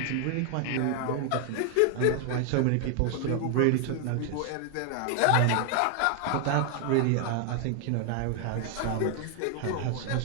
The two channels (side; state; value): both; different; correlation 0.00